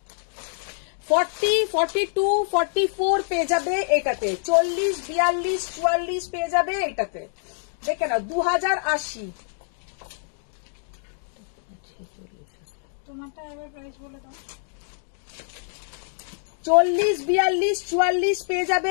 40, 42, 44 পেয়ে যাবে এটাতে। 40, 42, 44 পেয়ে যাবে এটাতে। দেখে নাও, 2080। তোমারটা এবার প্রাইস বলে দাও। 40, 42, 44 পেয়ে যাবে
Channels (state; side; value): silent; right; digital silence